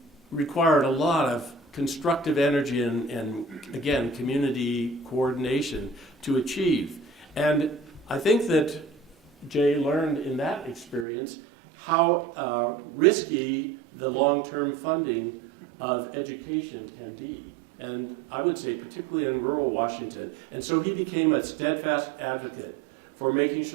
required a lot of constructive energy and again, community coordination to achieve. And I think that Jay learned in that experience how risky the long-term funding of education can be. And I would say particularly in rural Washington. And so he became a steadfast advocate for making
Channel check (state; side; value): drops out; left; at 11.1 s